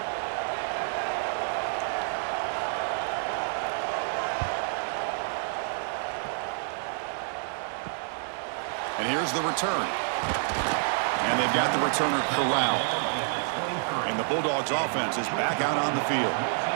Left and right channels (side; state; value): left; silent; digital silence